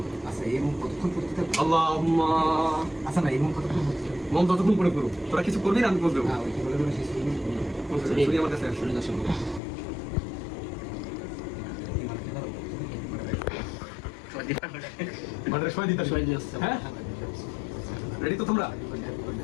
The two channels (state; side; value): drops out; right; at 9.6 s